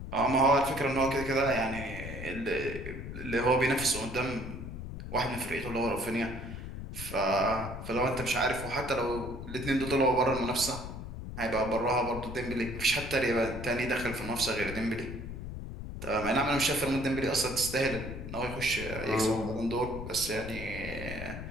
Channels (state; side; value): noise; left; rumble, 8 dB below the sound